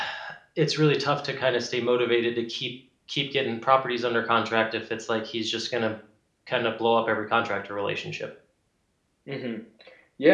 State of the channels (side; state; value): both; identical; correlation 1.00